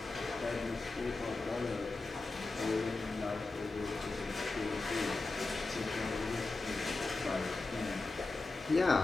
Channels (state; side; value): quieter; right; 3.4 dB